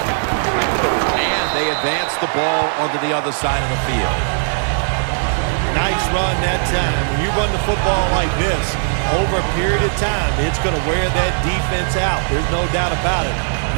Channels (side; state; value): left; silent; 62 dB below the other